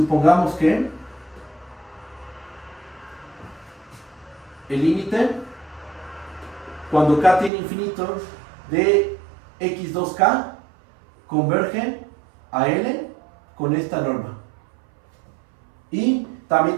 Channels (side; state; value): left; drops out; at 7.5 s